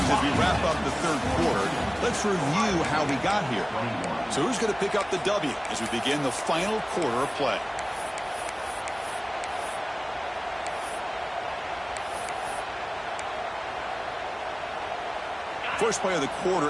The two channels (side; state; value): both; identical; correlation 1.00